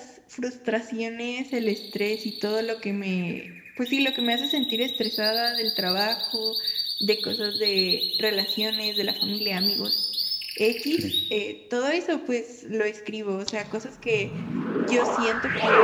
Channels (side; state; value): both; identical; correlation 1.00